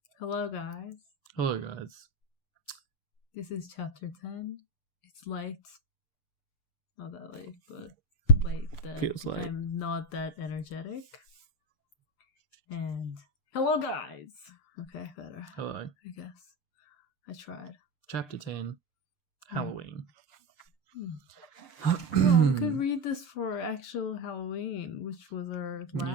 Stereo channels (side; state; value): right; late; 6.7 ms